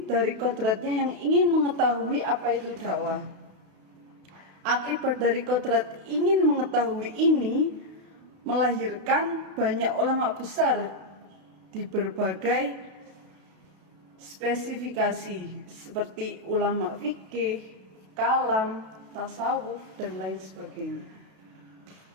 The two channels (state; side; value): late; left; 32 ms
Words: dari kodratnya yang ingin mengetahui apa itu dakwah. Akibat dari kodrat ingin mengetahui ini melahirkan banyak ulama besar di berbagai spesifikasi seperti ulama fikih, kalam, tasawuf, dan lain sebagainya.